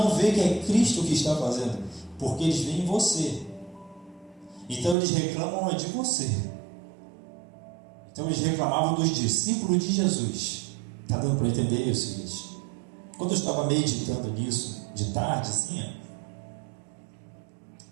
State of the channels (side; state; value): left; drops out; at 5.0 s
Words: vê que é Cristo que está fazendo, porque eles veem você. Então eles reclamam de você. Então eles reclamavam dos discípulos de Jesus. Está dando para entender isso, gente? Quando eu estava meditando nisso de tarde, assim,